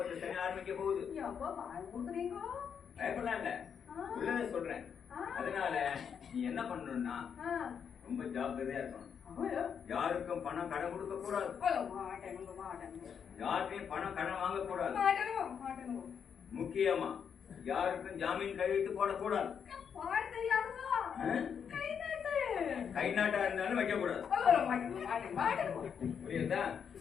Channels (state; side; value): quieter; right; 7.3 dB